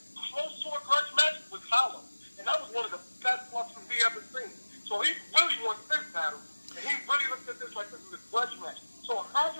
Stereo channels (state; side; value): inverted; both; correlation -1.00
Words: close to a grudge match was Hollow, and that was one of the best Luxes we ever seen. So he really wants this battle, and he really looked at this like this is a grudge match. So